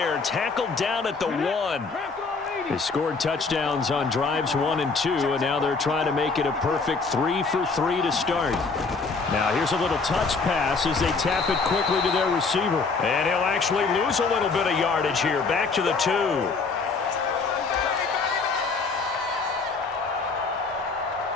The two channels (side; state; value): right; quieter; 4.4 dB